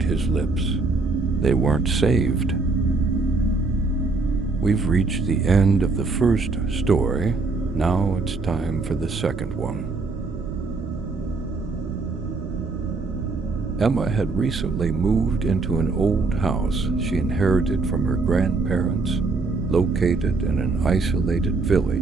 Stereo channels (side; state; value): left; quieter; 3.8 dB